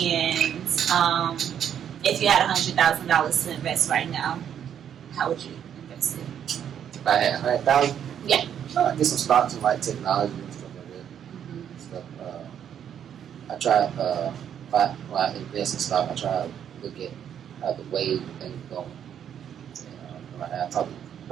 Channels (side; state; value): left; quieter; 9.1 dB